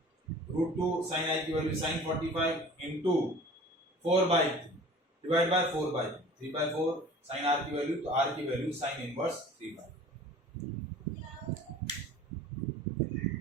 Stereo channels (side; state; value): both; normal; correlation 0.44